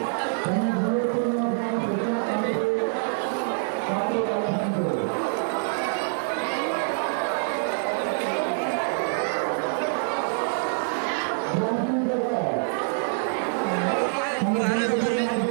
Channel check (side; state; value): left; silent; 61 dB below the other